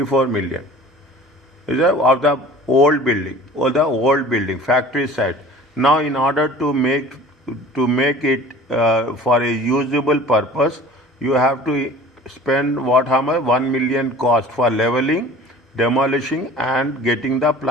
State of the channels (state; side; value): normal; both; correlation 0.44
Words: million. Is that of the old building or the old building, factory site. Now, in order to make it for a usable purpose, you have to spend what, how much? 1 million cost for leveling, demolishing, and getting the